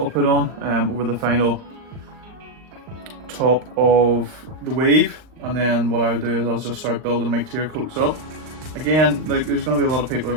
put on over the final top of the wave, and then what I'll do is I'll just start building my clear coats up. Again, like, there's going to be a lot of people who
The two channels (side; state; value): left; late; 39 ms